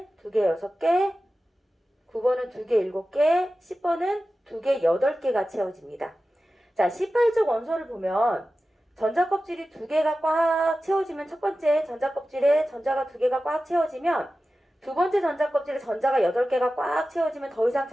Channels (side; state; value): both; normal; correlation 0.94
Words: 2개, 6개. 9번은 2개, 7개. 10번은 2개, 8개가 채워집니다. 자, 18쪽 원소를 보면 전자 껍질이 2개가 꽉 채워지면 첫 번째 전자 껍질에 전자가 2개가 꽉 채워지면 두 번째 전자 껍질에 전자가 8개가 꽉 채워지면 더 이상